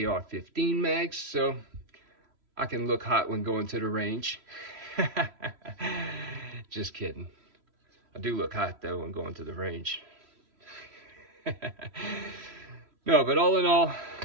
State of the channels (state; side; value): late; left; 3.1 ms